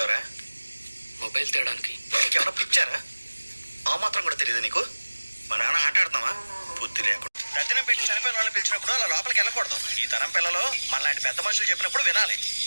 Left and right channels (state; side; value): inverted; both; correlation -1.00